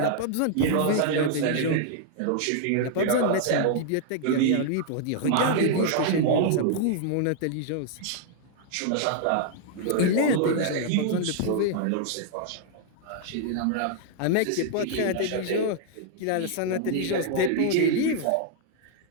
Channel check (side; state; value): both; different; correlation -0.01